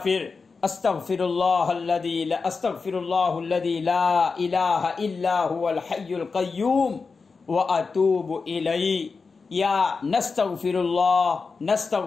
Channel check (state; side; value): quieter; right; 4.6 dB